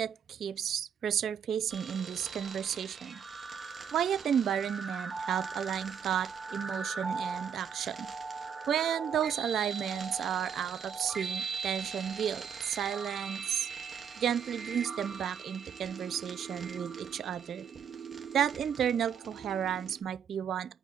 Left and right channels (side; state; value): left; quieter; 7.9 dB